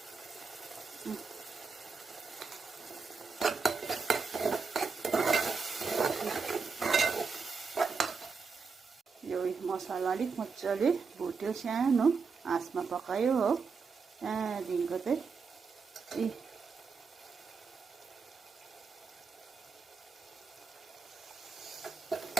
यो मसला अलिक मजाले भुट्यो, सानो आँचमा पकायो हो। त्यहाँदेखिको चाहिँ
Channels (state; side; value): quieter; left; 5.0 dB